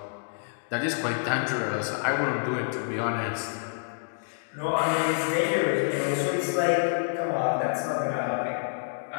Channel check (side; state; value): right; silent; digital silence